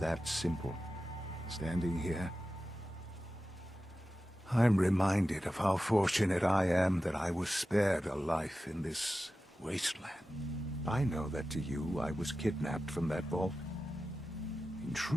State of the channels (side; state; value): both; normal; correlation 0.93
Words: simple. Standing here, I'm reminded of how fortunate I am that I was spared a life in this wasteland. I know that to you, I was kidnapped from that vault. In